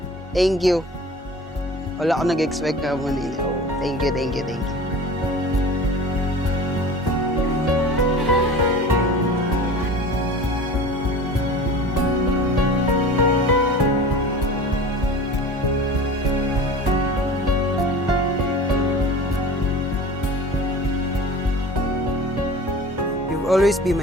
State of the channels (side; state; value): both; normal; correlation 0.38